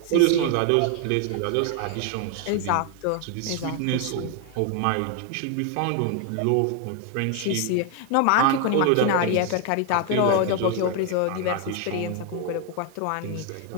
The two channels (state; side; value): different; both; correlation 0.01